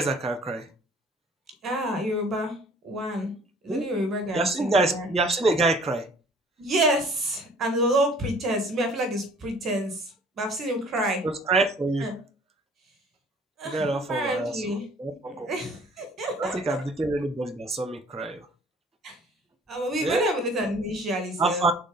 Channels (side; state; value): both; normal; correlation 0.53